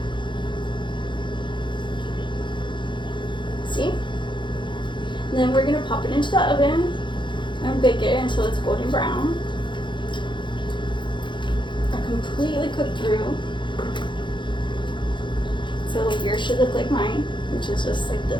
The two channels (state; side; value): late; right; 0.23 ms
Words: See? And then we're gonna pop it into the oven and bake it until it's golden brown. Completely cooked through. So yours should look like mine, which is just like